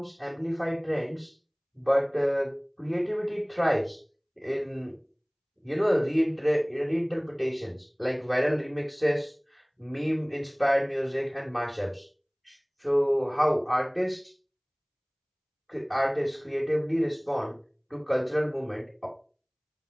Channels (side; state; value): both; identical; correlation 1.00